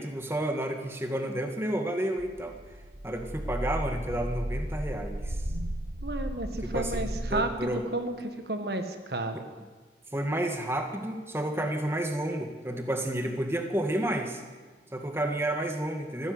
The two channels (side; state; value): both; normal; correlation 0.67